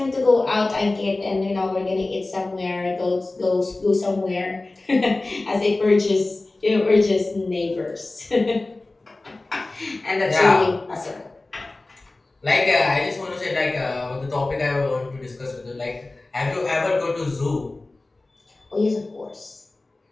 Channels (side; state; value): right; quieter; 3.1 dB